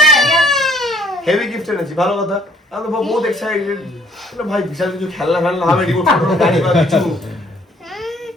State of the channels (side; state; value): both; normal; correlation 0.62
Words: heavy gift এনেছি। ভালো কথা, আমি তো বহুত এক্সাইটেড। ভাই বিশাল কিছু খেলনা হবে, রিমোট কন্ট্রোল গাড়ি বা কিছু।